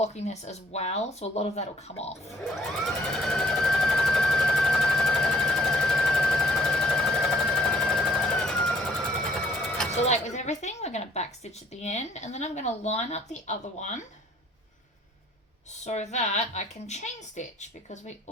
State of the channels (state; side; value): normal; both; correlation 0.61